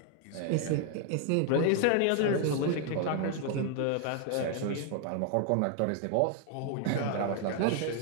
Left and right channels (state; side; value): different; both; correlation 0.00